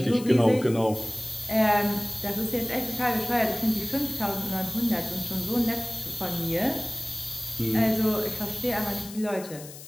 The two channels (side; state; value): left; noise; hiss, 15 dB below the sound